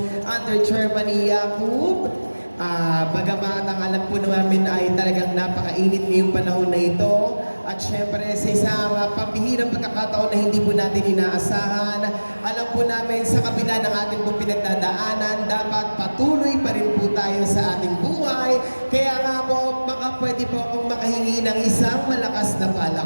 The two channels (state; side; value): inverted; both; correlation -1.00